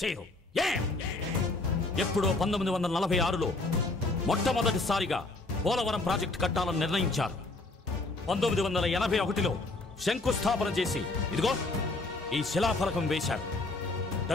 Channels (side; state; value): right; quieter; 3.1 dB